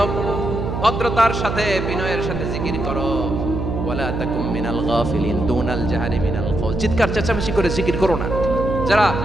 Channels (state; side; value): noise; right; hum, 3 dB below the sound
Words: ভদ্রতার সাথে বিনয়ের সাথে জিকির করো। ওয়ালা তাকুম মিনাল গাফিলিন, দুনাল জাহারি মিনাল কওল, চিৎকার চেঁচামেচি করে জিকির করো না। যারা